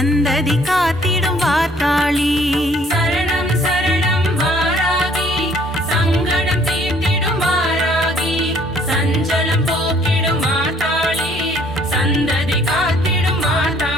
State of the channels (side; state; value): both; normal; correlation 0.60